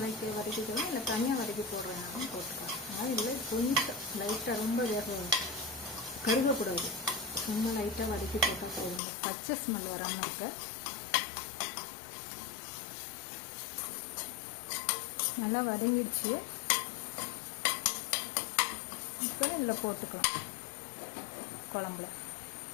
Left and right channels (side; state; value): right; drops out; at 9.0 s